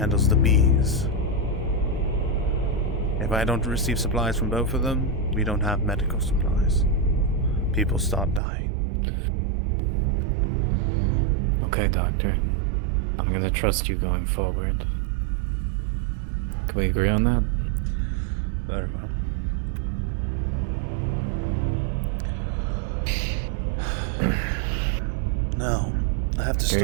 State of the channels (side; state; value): left; drops out; at 8.4 s